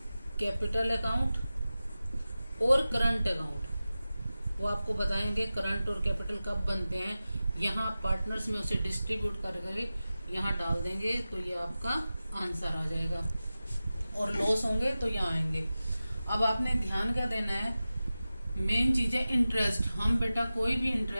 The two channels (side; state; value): both; inverted; correlation -0.95